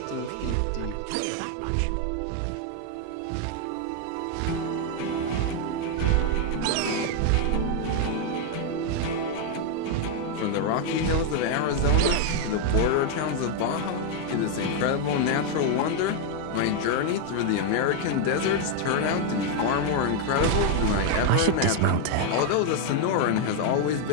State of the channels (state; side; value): different; both; correlation 0.01